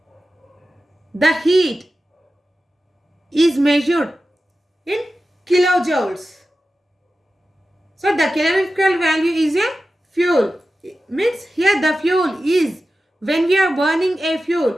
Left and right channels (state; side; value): normal; both; correlation 0.93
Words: the heat is measured in kilojoules. So the calorific value is a fuel. It means here the fuel is when we are burning a